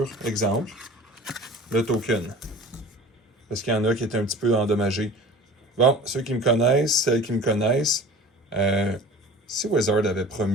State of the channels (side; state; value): both; normal; correlation 0.41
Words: exemple, le token. Parce qu'il y en a qui étaient un petit peu endommagés. Bon, ceux qui me connaissent, celles qui me connaissent, si Wizard avait